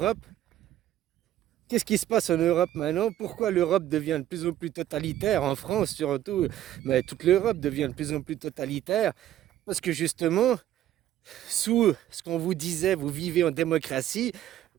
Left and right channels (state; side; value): quieter; left; 12.6 dB